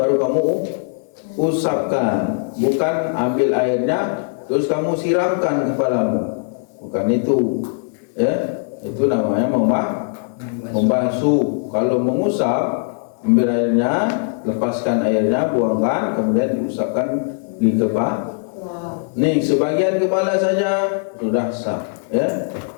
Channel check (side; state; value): right; silent; 60 dB below the other